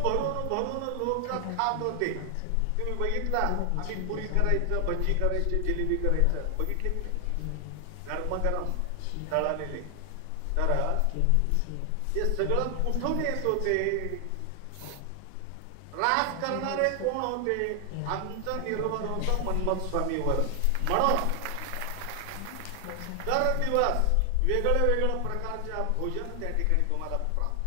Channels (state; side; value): different; both; correlation 0.00